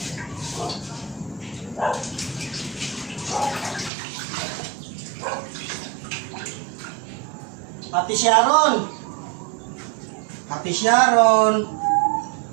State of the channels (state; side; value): drops out; left; at 3.9 s